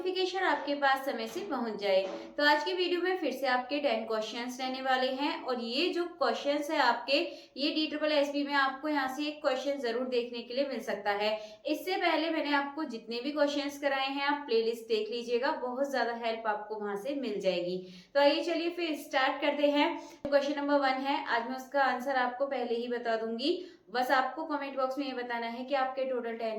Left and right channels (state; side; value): identical; both; correlation 1.00